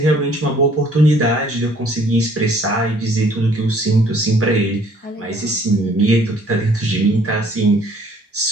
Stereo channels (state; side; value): normal; both; correlation 0.59